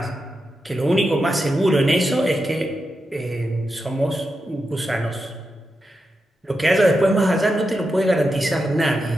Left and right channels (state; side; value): normal; both; correlation 0.88